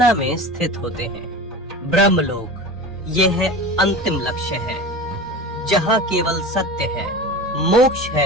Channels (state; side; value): normal; both; correlation 0.32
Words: में स्थित होते हैं। ब्रह्मलोक, यह है अंतिम लक्ष्य है, जहाँ केवल सत्य है, मोक्ष